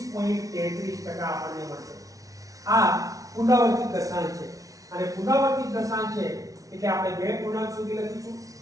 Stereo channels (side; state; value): left; late; 0.17 ms